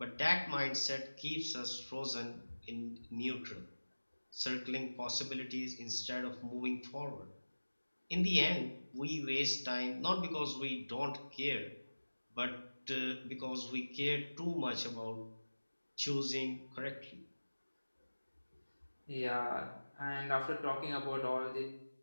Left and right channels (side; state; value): both; inverted; correlation -1.00